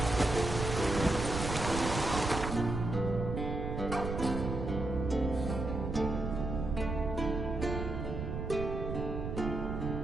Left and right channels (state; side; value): noise; right; rumble, 4 dB below the sound